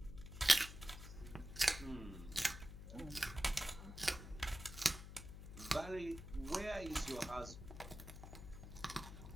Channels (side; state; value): left; noise; hum, 11 dB below the sound